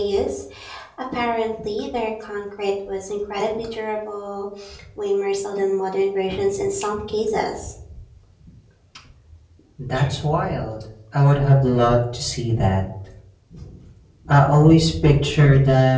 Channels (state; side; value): identical; both; correlation 1.00